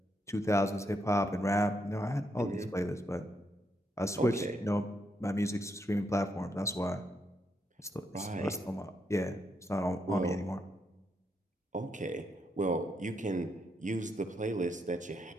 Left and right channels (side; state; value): both; normal; correlation 0.79